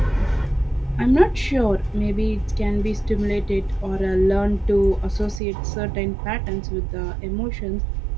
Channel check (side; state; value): left; drops out; at 5.4 s